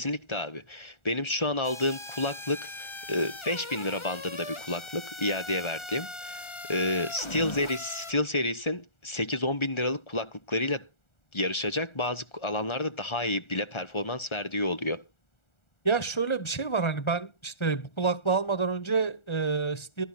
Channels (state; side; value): late; right; 1.4 ms